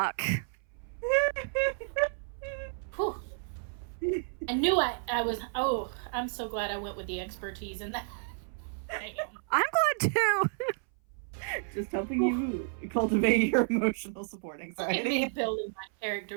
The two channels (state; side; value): silent; left; 57 dB below the other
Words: Whew. I knew I was. Oh, I'm so glad I went with the expertise in that. Damn. I'm glad, too. Just helping you cultivate your emotional support Look at me anxiety. building my